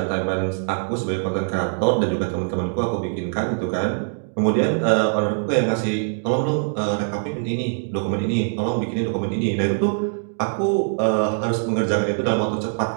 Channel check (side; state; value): left; silent; digital silence